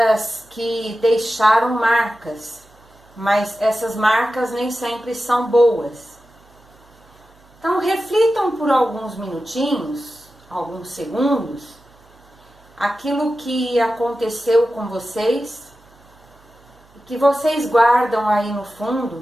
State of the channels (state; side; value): noise; right; hum, 29 dB below the sound